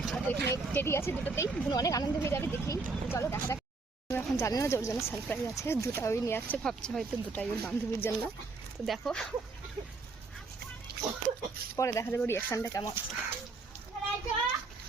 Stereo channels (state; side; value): quieter; left; 3.9 dB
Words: আর তো এখানে টেডি আছে দুটোতেই, বুনু অনেক আনন্দ হয়ে যাবে দেখেই। তো চলো দেখা যাক। এখন জানি না যে ওর জন্য সারপ্রাইজ আছে, দুটা ওই নিয়ে আসছে, ভাবছে হয়তো দুটাই ওর বান্ধবীর জন্য। তো দেখো পরে দেখা যাবে রিয়াকশনটা কেমন আছে।